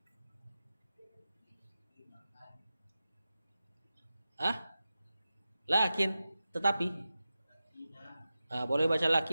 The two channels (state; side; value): inverted; both; correlation -0.93